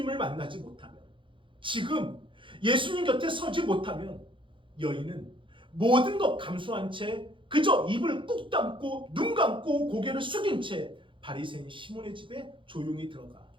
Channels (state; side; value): late; left; 0.24 ms